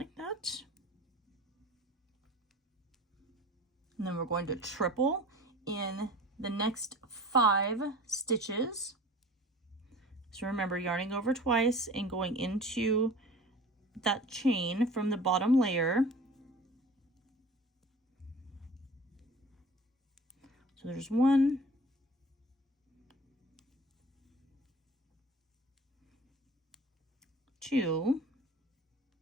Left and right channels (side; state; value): both; normal; correlation 0.43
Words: that. And then we're going to triple in the next 5 stitches. So remember, yarning over twice and going into that chain from the bottom layer. So there's 1, 2.